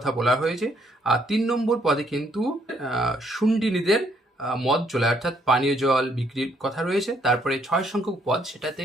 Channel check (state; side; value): normal; both; correlation 0.69